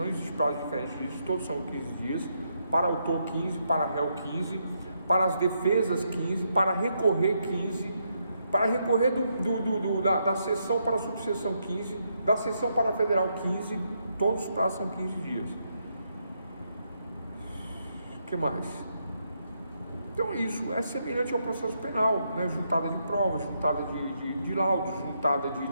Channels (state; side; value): inverted; both; correlation -0.78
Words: existe prazo diferente disso, todos são 15 dias, para autor 15, para réu 15, para as defesas 15, para recorrer 15, para recorrer da seção para a subseção 15, da seção para a federal 15, todos os prazos são 15 dias. O que mais? Então isso é semelhante ao processo penal, né? Juntada de provas, juntada de laudos, juntada de